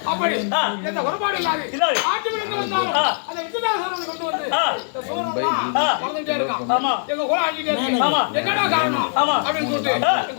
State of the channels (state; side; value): silent; right; 59 dB below the other